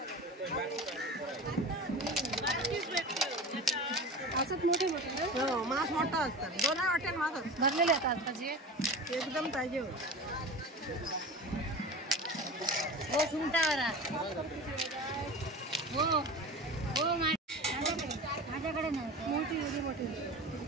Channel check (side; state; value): both; normal; correlation 0.32